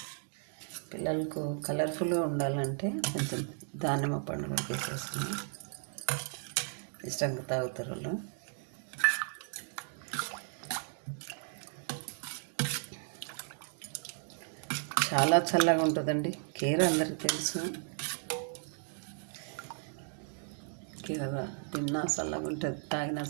పిల్లలకు కలర్ఫుల్గా ఉండాలంటే కొంచెం దానిమ్మ పండు వేసేస్తున్నాం, ఇష్టంగా తాగుతారు వాళ్ళు. చాలా చల్లగా ఉంటుందండి కీర, అందరికీ తెలుసు. కీర తిన్నా చల్లగా ఉంటుంది, తాగినా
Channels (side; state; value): left; silent; 55 dB below the other